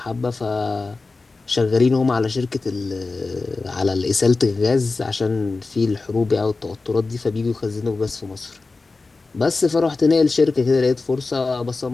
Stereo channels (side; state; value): right; quieter; 3.8 dB